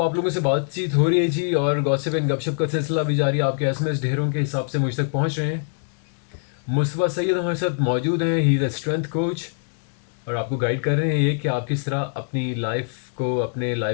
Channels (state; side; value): silent; right; digital silence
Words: आप लोगों से बातचीत हो रही है जी, और गॉसिप एंड गपशप का सिलसिला भी जारी है। आपके एसएमएस ढेरों के हिसाब से मुझ तक पहुंच रहे हैं। मुस्तफ़ा सैयद हमारे साथ मौजूद हैं। He is a strength coach, और आपको गाइड कर रहे हैं ये कि आप किस तरह अपनी लाइफ को, अपने